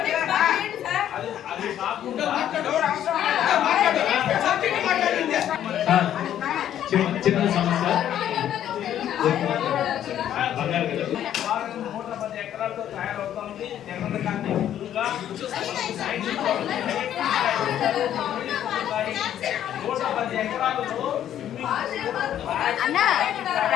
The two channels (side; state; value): right; quieter; 10.9 dB